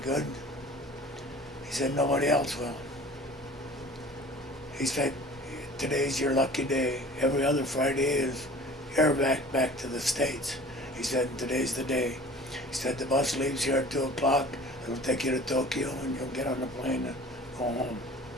He said, "Nobody else will." He said, "Today's your lucky day. Every other Friday is airback back to the States." He said, "Today's the day." He said, "The bus leaves here at 2 o'clock. It'll take you to Tokyo, and you'll get on the plane and go home."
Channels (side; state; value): both; normal; correlation 0.44